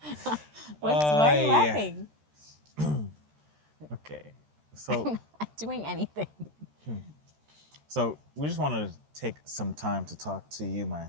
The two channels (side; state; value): left; late; 13 ms